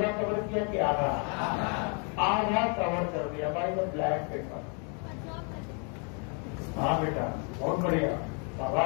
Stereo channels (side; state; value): right; quieter; 37.6 dB